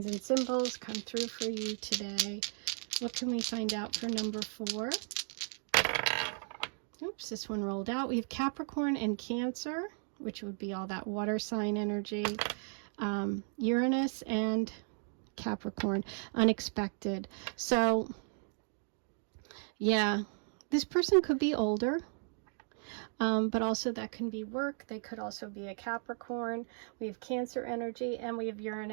and symbols come through for you today. What can we find out for number 4? Oops, this one rolled out. We have Capricorn and Cancer, which would be all that water sign energy. Uranus and Capricorn, unexpected. So, yeah, this person could be older. But also that can be work. They could also be a Capricorn. We have Cancer energy, and we have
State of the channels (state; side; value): silent; left; 54 dB below the other